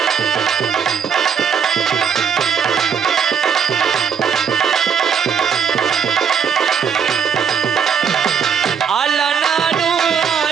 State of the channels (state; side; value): quieter; left; 7.0 dB